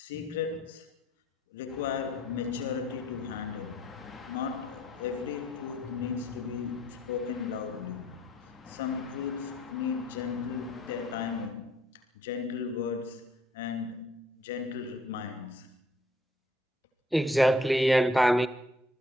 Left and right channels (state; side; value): normal; both; correlation 0.61